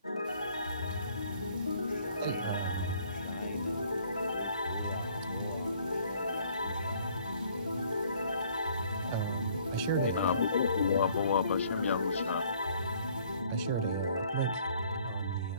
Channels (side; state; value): both; inverted; correlation -0.60